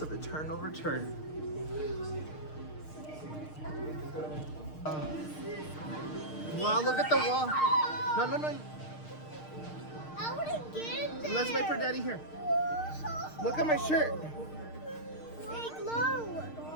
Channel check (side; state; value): right; late; 6.5 ms